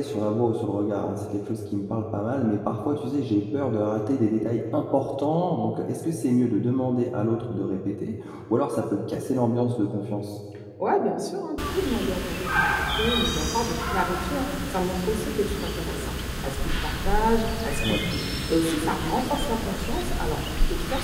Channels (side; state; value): both; identical; correlation 1.00